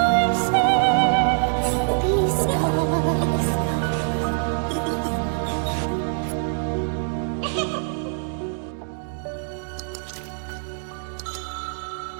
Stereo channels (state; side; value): silent; left; 60 dB below the other